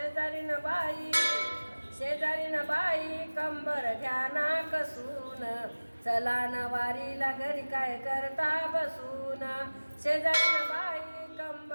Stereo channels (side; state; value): both; inverted; correlation -1.00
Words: बाई, शेजारीन बाई कंबर घ्या ना कसून, चला ना वारीला घरी काय करता बसून. शेजारीन बाई